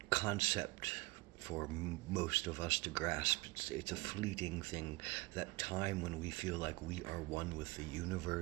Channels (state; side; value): quieter; left; 22.5 dB